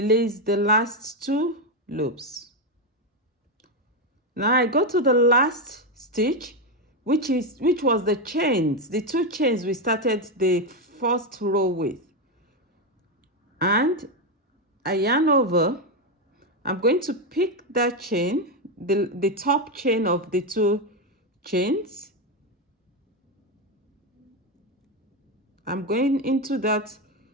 the last 2 loops. Now I go to the last stitch, which was the chains, the 2 chains we started the first row with, and I yarn over. I'm going to pick that chain, the top chain of the 2 chains. I'm going into that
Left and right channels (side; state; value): both; normal; correlation 0.08